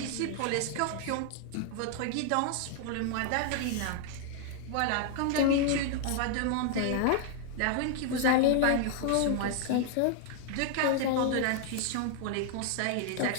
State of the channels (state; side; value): different; both; correlation 0.00